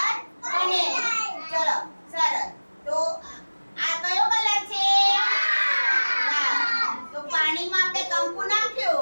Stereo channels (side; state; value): both; inverted; correlation -1.00